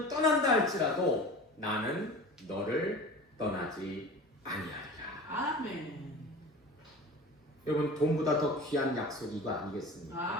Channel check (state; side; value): normal; both; correlation 0.36